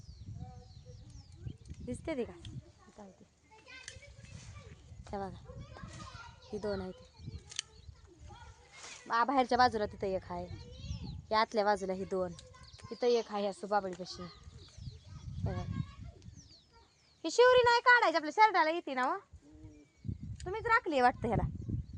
दिसते ती का बघा ही दोन आहे ती बाहेरच्या बाजूला तिथं एक आहे या आतल्या बाजूला ही दोन तिथं एक आहे असं बाबळीपाशी ही शिवरी नाही काढायची आपल्या शर्टाला येते ना तुम्हीच राखली वाटतं ह्याला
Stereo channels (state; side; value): identical; both; correlation 1.00